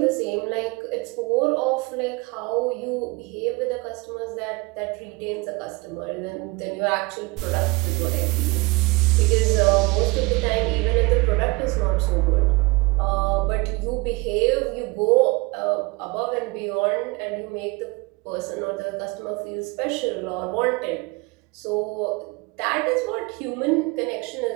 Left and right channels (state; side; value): quieter; left; 25.3 dB